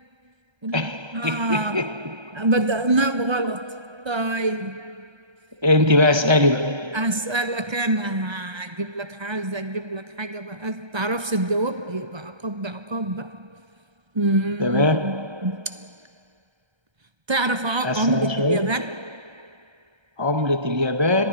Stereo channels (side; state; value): left; late; 1.3 ms